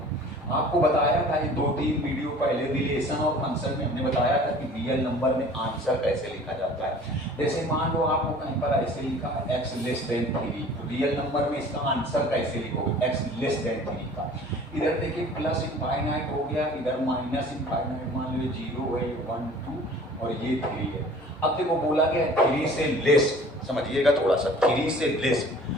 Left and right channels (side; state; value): both; normal; correlation 0.47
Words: आपको बताया था ये 2-3 वीडियो पहले रिलेशन और फंक्शन में हमने बताया था कि रियल नंबर में आंसर कैसे लिखा जाता है। जैसे मान लो आपको कहीं पर ऐसे लिखा है x लेस देन 3, तो रियल नंबर में इसका आंसर कैसे लिखोगे, x लेस देन 3 का। इधर देखिए प्लस इनफाइनाइट हो गया, इधर माइनस इनफाइनाइट, मान लो 0 है, 1 2 और ये 3 है। अब देखो बोला गया 3 से लेस, समझिएगा थोड़ा सा, 3 से लेस,